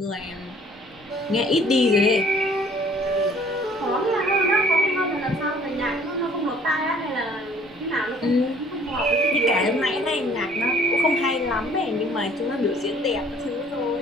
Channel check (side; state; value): both; normal; correlation 0.56